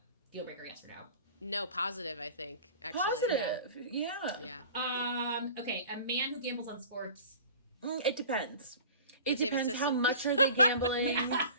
deal breaker, yes or no? No, positive, I think, actually. Positive, yeah. Okay, a man who gambles on sports. It depends. It depends how much are they gambling.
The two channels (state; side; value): inverted; both; correlation -0.42